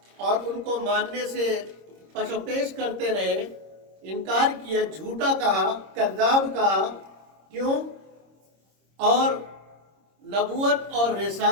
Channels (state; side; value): late; left; 26 ms